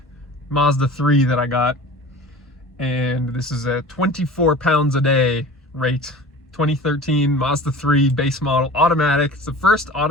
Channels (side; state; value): both; normal; correlation 0.40